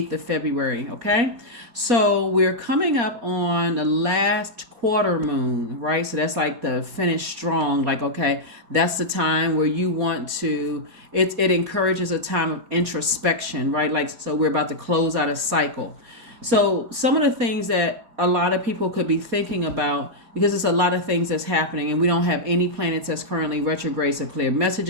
of February, okay? So we're coming up on the last quarter moon, right? So that's like the finish strong, like, okay, that's the time where you want to, it encourages a time of introspection, right? Like, so we're about to close out a cycle. So some of the things that a lot of people could be thinking about, because it's a lot of things that's happening, and we don't have any planets that's currently retrograde. So clear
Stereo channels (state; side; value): late; left; 4.2 ms